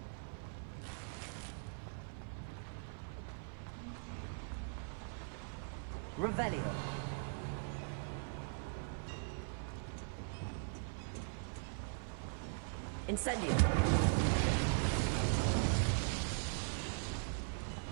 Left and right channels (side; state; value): left; silent; 51 dB below the other